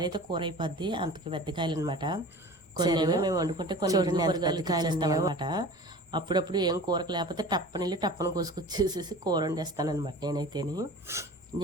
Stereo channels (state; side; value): normal; both; correlation 0.39